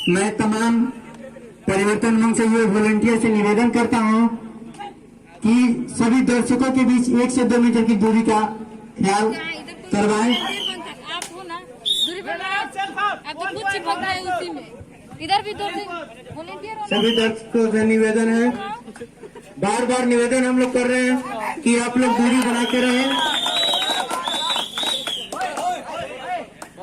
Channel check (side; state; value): both; identical; correlation 1.00